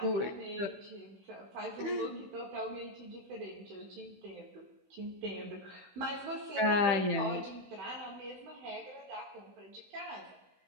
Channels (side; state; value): left; late; 16 ms